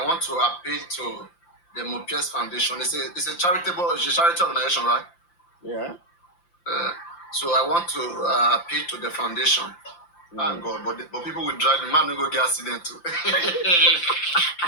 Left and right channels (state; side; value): late; right; 5.8 ms